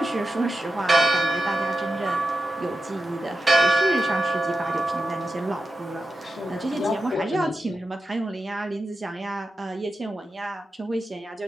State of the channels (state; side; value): normal; both; correlation 0.91